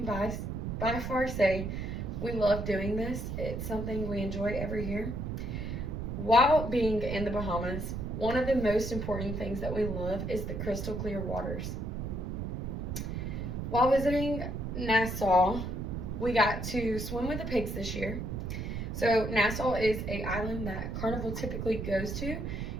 by far say we love doing this. It's something we enjoy every year. While being in the Bahamas, one of the most important things that we love is the crystal clear waters. While visiting Nassau, we got to swim with the pigs this year. So Nassau is an island that Carnival typically goes to.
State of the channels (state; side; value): noise; right; rumble, 4 dB below the sound